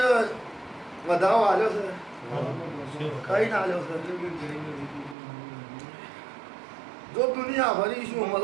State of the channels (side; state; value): left; drops out; at 5.2 s